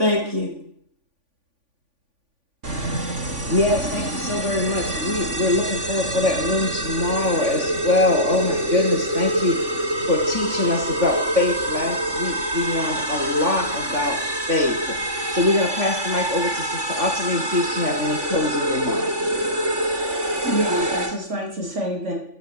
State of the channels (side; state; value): left; late; 3.5 ms